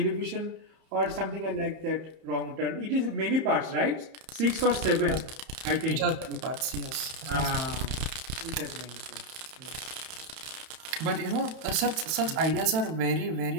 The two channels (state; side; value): late; left; 31 ms